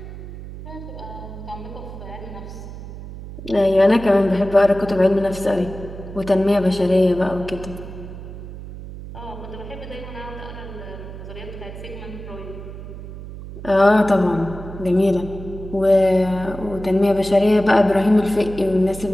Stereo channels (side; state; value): right; noise; hum, 12 dB below the sound